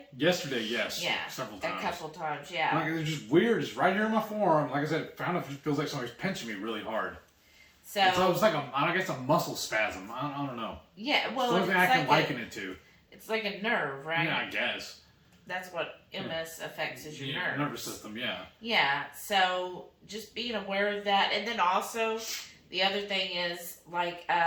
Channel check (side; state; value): both; identical; correlation 1.00